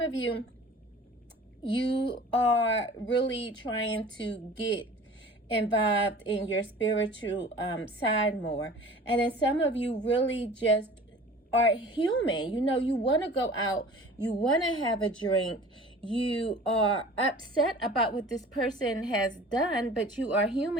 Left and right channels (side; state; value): both; normal; correlation 0.43